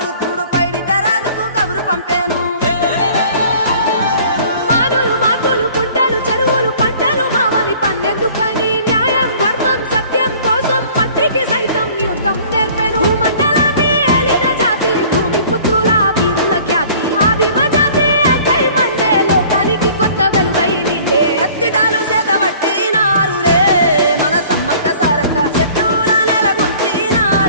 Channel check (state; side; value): inverted; both; correlation -0.51